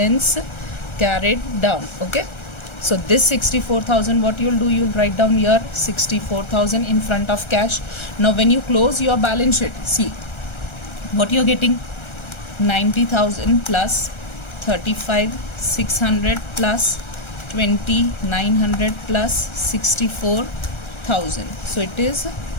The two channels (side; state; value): right; late; 1.3 ms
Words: carried down. Okay, so this 64,000, what you will do, you will write down here 64,000 in front of cash. Now when you close your balance sheet, see what you are getting, 90,000 plus 35,600 plus 2,900 plus 64,000. So it is